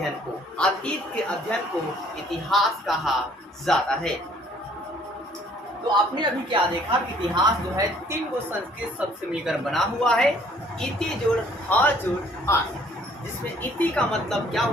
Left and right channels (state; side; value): normal; both; correlation 0.59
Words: को इतिहास कहा जाता है। तो आपने अभी क्या देखा कि इतिहास जो है 3 गो संस्कृत शब्द से मिलकर बना हुआ है। इति जोड़ ह जोड़ आस, जिसमें इति का मतलब क्या